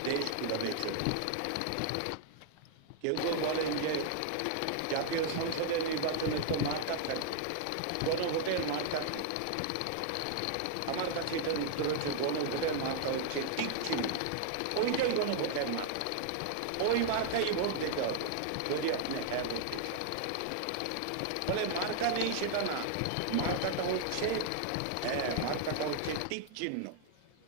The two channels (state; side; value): different; both; correlation -0.01